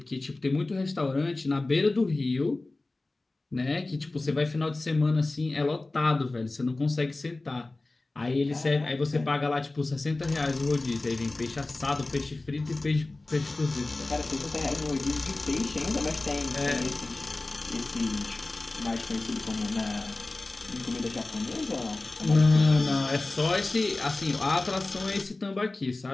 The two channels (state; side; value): quieter; right; 3.1 dB